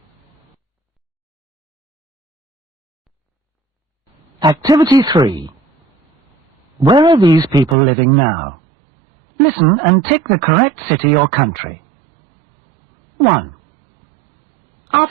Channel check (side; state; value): left; drops out; at 7.8 s